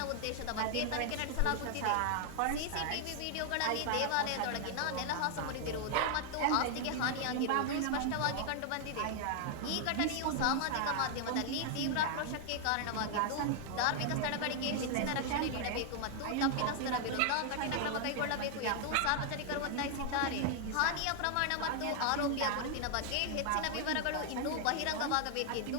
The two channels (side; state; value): both; different; correlation 0.00